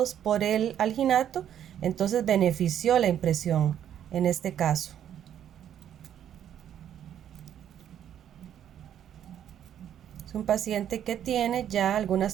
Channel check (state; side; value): quieter; left; 10.1 dB